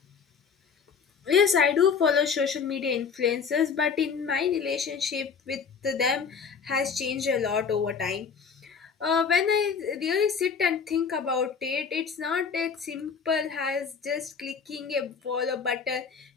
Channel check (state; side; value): quieter; right; 6.0 dB